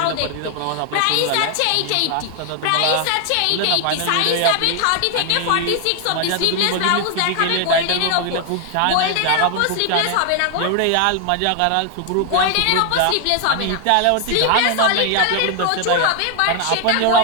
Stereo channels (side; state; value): both; different; correlation 0.00